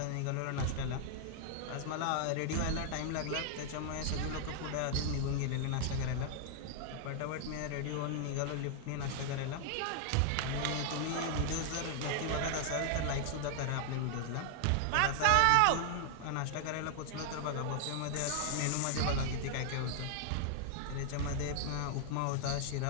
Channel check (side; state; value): both; different; correlation 0.00